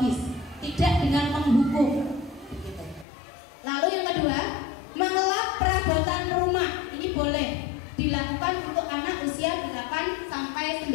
tidak dengan menghukum. Gitu. Lalu yang kedua, mengelap perabotan rumah. Ini boleh dilakukan untuk anak usia 8 sampai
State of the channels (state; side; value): drops out; right; at 3.1 s